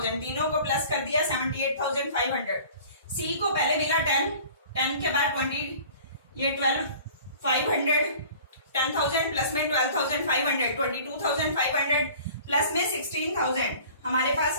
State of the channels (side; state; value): both; inverted; correlation -0.46